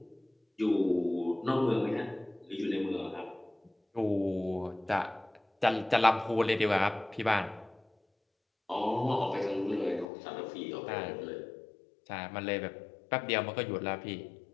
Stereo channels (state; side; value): drops out; right; at 10.1 s